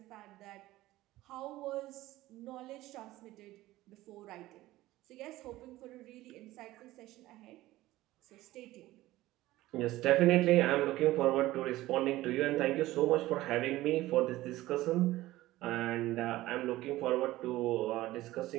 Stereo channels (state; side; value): quieter; left; 16.9 dB